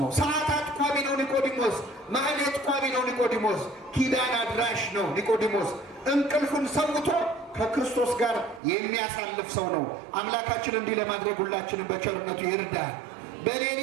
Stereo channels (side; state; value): left; drops out; at 8.6 s